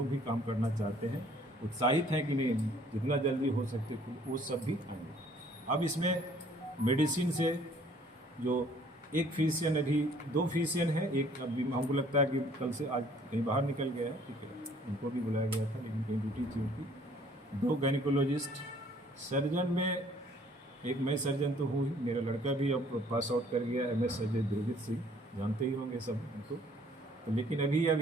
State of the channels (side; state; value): both; normal; correlation 0.58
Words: भी काम करना चाहते हैं, उत्साहित हैं कि नहीं जितना जल्दी हो सकते वो सब भी आएंगे। अब इसमें मेडिसिन से जो एक फिजिशियन, अभी 2 फिजिशियन है, एक अभी हमको लगता है कि कल से आज कहीं बाहर निकल गया है, ठीक है, उनको भी बुलाया गया था लेकिन कहीं ड्यूटी थी उनकी। 2 गायनिकोलॉजिस्ट, सर्जन में एक मैं सर्जन तो हूँ ही, मेरा लड़का भी अब पास आउट कर गया MS सर्जन दुर्गित सिंह, जानते ही होंगे सब उनको। तो लेकिन अभी